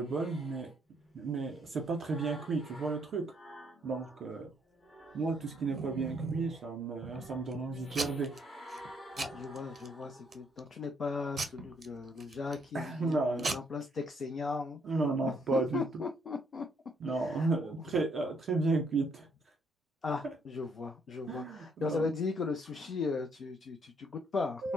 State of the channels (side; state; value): both; normal; correlation 0.69